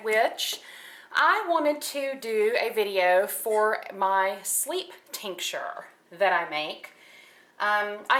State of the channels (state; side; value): identical; both; correlation 1.00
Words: Witch. I wanted to do a video for my sleep tincture that I make. I